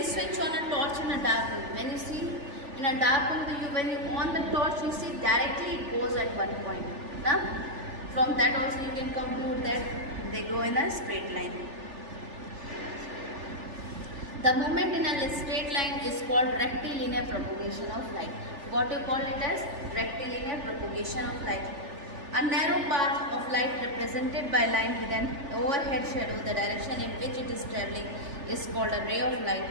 switch on a torch in a dark room, when you see in a dark room, when you on the torch, you see directly it goes at one point. Now, from that also you can conclude that they go in a straight line. The movement in a straight line is called rectilinear propagation of light. What you call it as rectilinear propagation of light. A narrow path of light represented by line with an overhead shadow, the direction in which it is traveling is called a ray of light.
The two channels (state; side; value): late; left; 3.4 ms